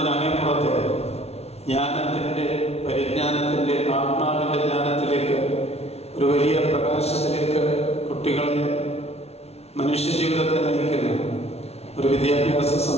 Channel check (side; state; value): right; late; 0.31 ms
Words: ജ്ഞാനത്തിൻ്റെ, പരിജ്ഞാനത്തിൻ്റെ, ആത്മാവിൻ്റെ ജ്ഞാനത്തിലേക്ക്, ഒരു വലിയ പ്രകാശത്തിലേക്ക് കുട്ടികളെ മനുഷ്യജീവിതത്തെ നയിക്കുന്ന ഒരു വിദ്യാഭ്യാസ